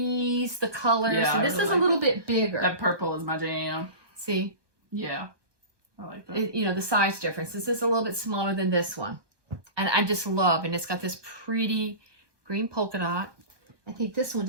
the colors. Yeah, so this is a little bit bigger. That purple is my jam. See? Yeah. I like that. The size difference. This is a little bit smaller than this one. And I just love, and it's got this pretty green polka dot. I think this one,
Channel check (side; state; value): left; late; 1.2 ms